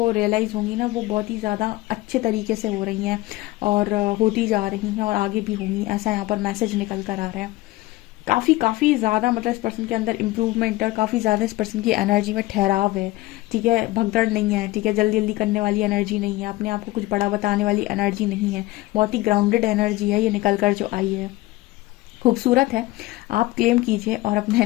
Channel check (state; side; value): quieter; right; 18.5 dB